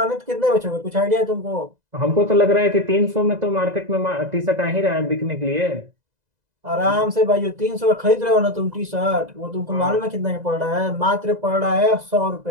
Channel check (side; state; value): left; late; 2.0 ms